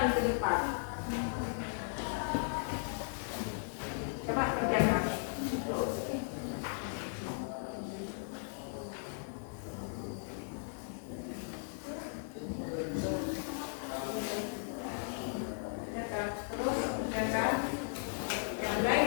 depan. Coba kerjakan. Terus kerjakan yang lain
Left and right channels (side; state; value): right; silent; digital silence